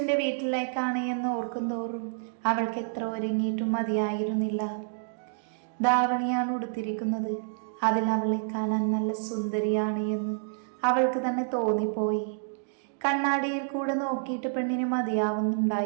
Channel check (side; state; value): left; silent; digital silence